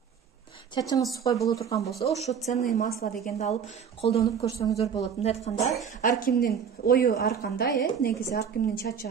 чачыңыз сухой боло турган болсо, ошо ценные масла дегенди алып колдонуп көрсөңүздөр болот. Мындай айтканда, ар кимдин ою ар кандай, негизи ар кимдин чачы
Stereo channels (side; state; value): left; quieter; 7.3 dB